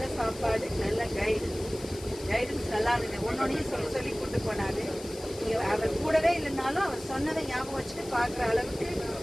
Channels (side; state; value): left; noise; hiss, 16 dB below the sound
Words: சாப்பாடு, நல்ல கைடன்ஸ் நல்லா இருந்தது. ஒன்னொன்னையும் சொல்லி கூட்டு போனாரு. அவர் கூடவே இல்லைனாலும் அவர் சொன்னதை ஞாபகம் வச்சுட்டு பார்க்குற அளவுக்கு